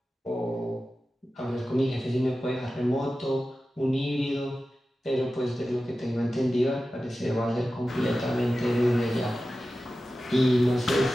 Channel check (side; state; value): both; normal; correlation 0.94